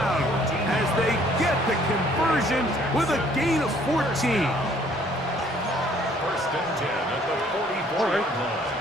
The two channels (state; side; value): normal; both; correlation 0.60